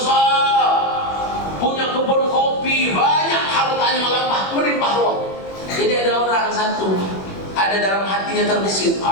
punya kebun kopi banyak, hartanya melimpah ruah. Jadi ada orang satu, ada dalam hatinya terbesit,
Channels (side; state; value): right; late; 21 ms